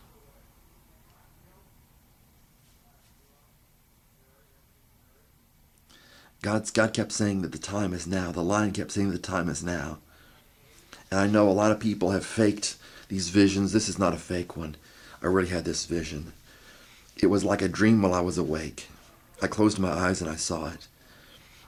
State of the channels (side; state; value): both; identical; correlation 1.00